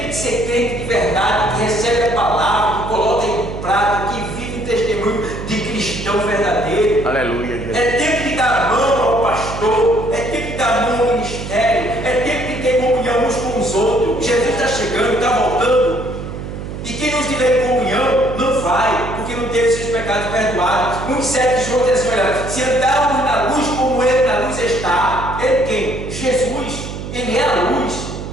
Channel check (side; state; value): right; noise; hum, 8 dB below the sound